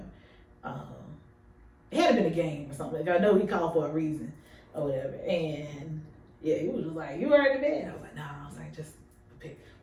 It had been a game or something. Like, I know he called for a reason or whatever. And yeah, he was just like, "You already in bed?" I was like, "No." I was like, just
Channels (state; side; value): identical; both; correlation 1.00